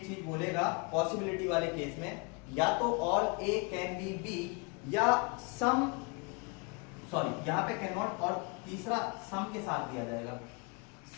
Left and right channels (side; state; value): right; quieter; 31.5 dB